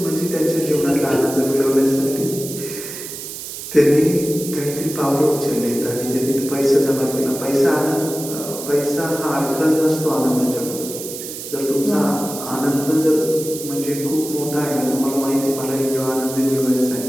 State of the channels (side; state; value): right; noise; hiss, 9 dB below the sound